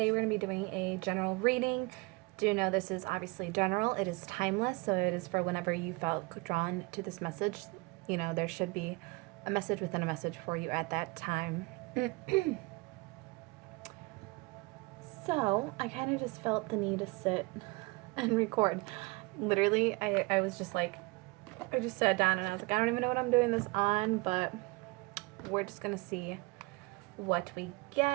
we're going to be doing a general reading. Do know this is obviously general, it is timeless, so it is for whenever you felt drawn to this message. You know, there should be a message within a message for you at that time. So I kind of just felt the need to sit and record. Literally, I was just like, I just sat down and I was like, I don't even know what I'm doing this on, but we're just going to see what we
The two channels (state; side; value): quieter; left; 25.3 dB